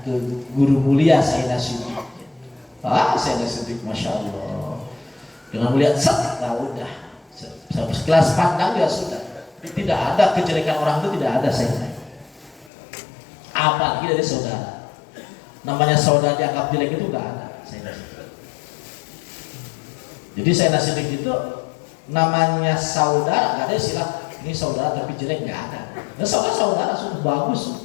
ke guru mulia Sayyidina Siddiq. Sayyidina Siddiq, masya Allah, dengan melihat set, nah udah, sekelas pandang ya sudah, tidak ada kejelekan orang itu tidak ada saya. Apalagi dari saudara. Namanya saudara dianggap jelek itu enggak ada. Jadi Sayyidina Siddiq itu namanya saudara, enggak ada istilah ini saudara tapi jelek, enggak ada. Nah, saudara sudah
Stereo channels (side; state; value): right; drops out; at 12.7 s